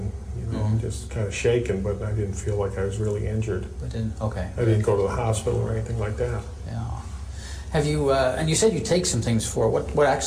just kind of shaken, but I didn't feel like I was really injured. But didn't. Okay. I didn't go to the hospital or anything like that. Yeah. Have you? And you said you take some things for it. What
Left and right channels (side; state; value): both; identical; correlation 1.00